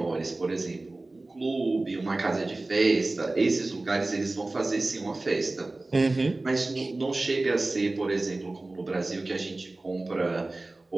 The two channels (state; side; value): quieter; left; 3.0 dB